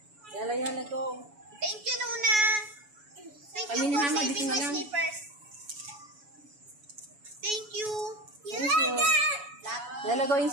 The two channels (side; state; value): left; late; 7.0 ms